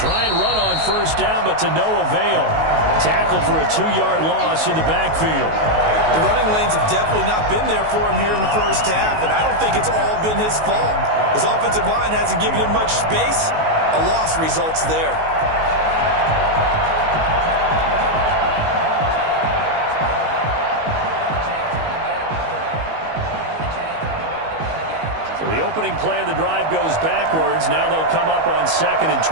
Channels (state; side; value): late; left; 19 ms